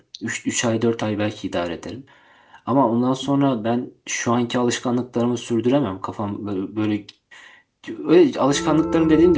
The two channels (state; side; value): identical; both; correlation 1.00